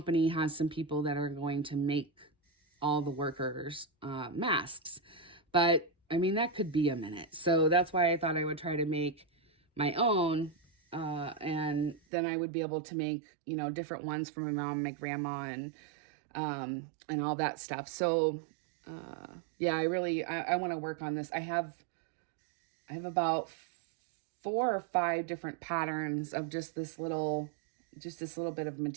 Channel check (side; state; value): left; drops out; at 12.0 s